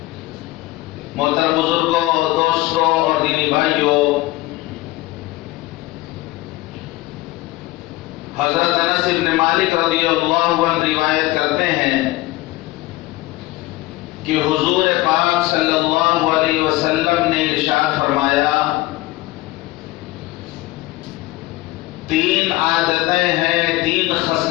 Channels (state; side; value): quieter; right; 18.7 dB